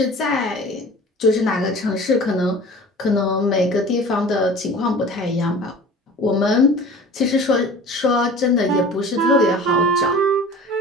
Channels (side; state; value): both; normal; correlation 0.41